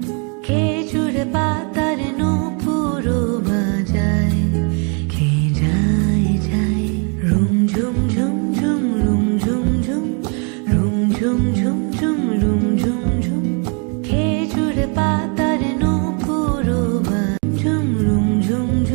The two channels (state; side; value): quieter; left; 36.7 dB